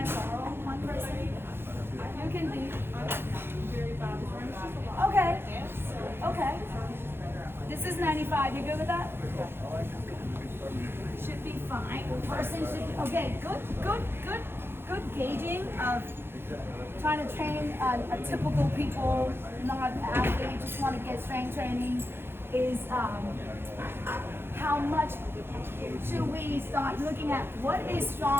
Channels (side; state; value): left; late; 0.11 ms